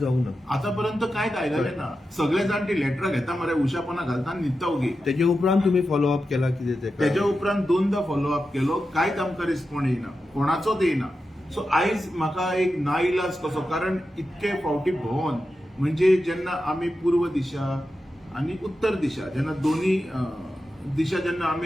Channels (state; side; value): normal; both; correlation 0.90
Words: ना. आतापर्यंत कांयच आयलेलें ना. सगळे जाण ती लेटरां घेता मरे, उशापणां घालता आनी न्हिदता ओगी. तेजे उपरांत तुमी फॉलोअप केला कितें तेका? तेच्या उपरांत 2दा फॉलोअप केलो, कांयच आमकां रिस्पॉन्ड येयना, कोणाचोच येयना. सो आयज म्हाका एक नाइलाज कसो, कारण इतके फावटी भोंवन म्हणजे जेन्ना आमी पूर्व दिशा आणि उत्तर दिशा जेन्ना दोन्ही दिशा जेन्ना